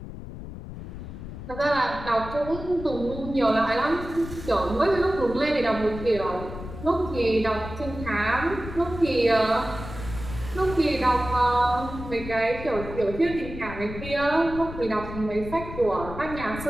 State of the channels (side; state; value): left; noise; rumble, 11 dB below the sound